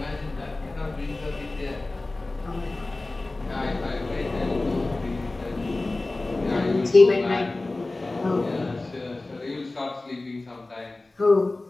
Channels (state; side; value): quieter; right; 3.0 dB